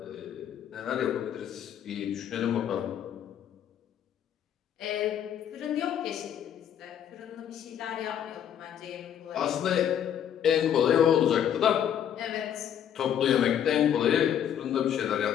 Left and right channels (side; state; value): right; quieter; 9.5 dB